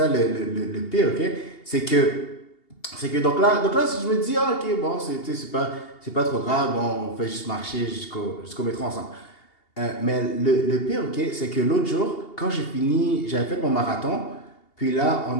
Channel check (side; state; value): right; late; 2.8 ms